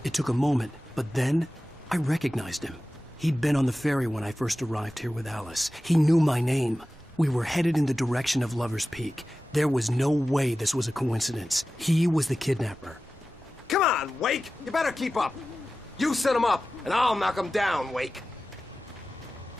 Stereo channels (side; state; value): right; noise; rumble, 27 dB below the sound